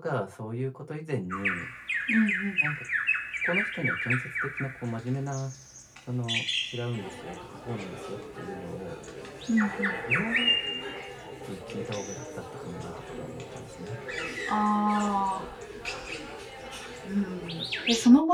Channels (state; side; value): identical; both; correlation 1.00